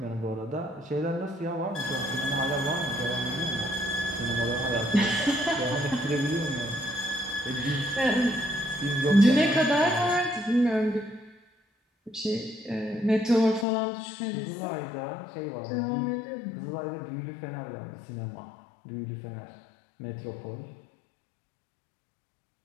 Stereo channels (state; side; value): drops out; right; at 13.7 s